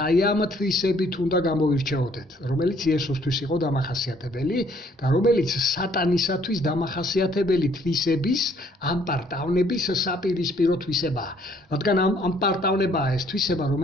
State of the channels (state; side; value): normal; both; correlation 0.63